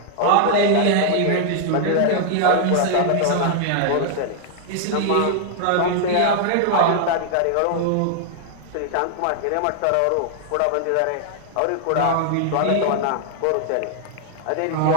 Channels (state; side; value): different; both; correlation 0.00